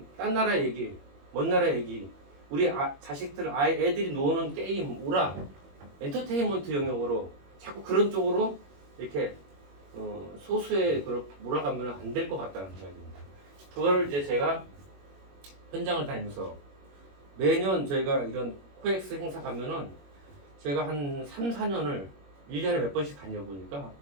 딴 나라 얘기, 먼 나라 얘기, 우리 자식들, 애들이 노는 게임, 오락, 엔터테인먼트 영역으로 자꾸 그런 쪽으로 이렇게 소수의 그걸 몰아가면 안 될 것 같다는 생각입니다. 그거를 이제 제가 현장을 다니면서 매년 저희가 이런 코엑스 행사 가면은 제가 한 3, 4년을 1년에 몇 번씩 다녀보니까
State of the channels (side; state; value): left; late; 21 ms